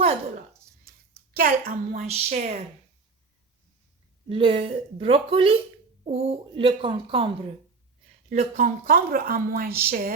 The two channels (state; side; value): quieter; left; 4.4 dB